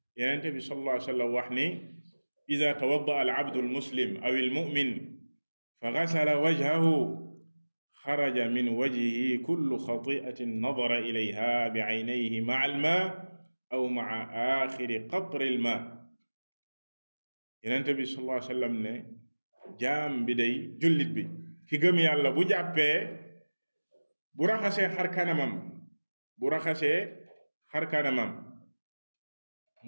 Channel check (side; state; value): both; inverted; correlation -1.00